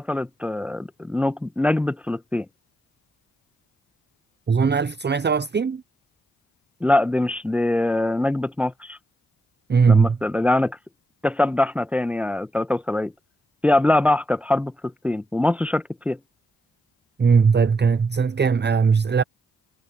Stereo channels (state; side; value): normal; both; correlation 0.83